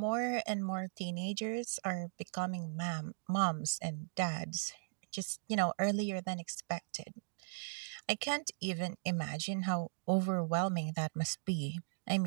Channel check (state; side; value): silent; left; digital silence